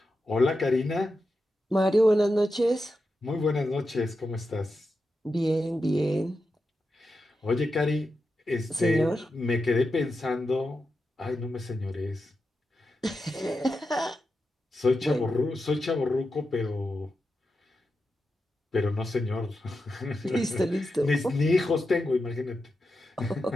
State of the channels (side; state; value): both; normal; correlation 0.89